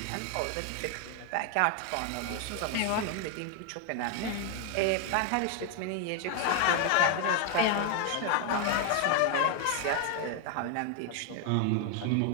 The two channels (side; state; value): both; different; correlation 0.01